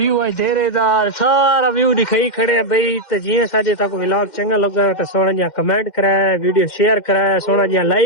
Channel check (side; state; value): right; late; 2.1 ms